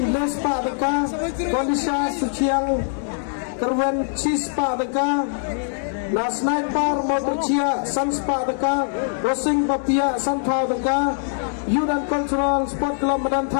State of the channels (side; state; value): right; silent; digital silence